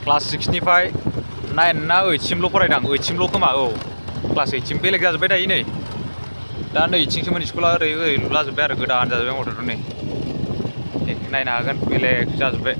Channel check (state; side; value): inverted; both; correlation -1.00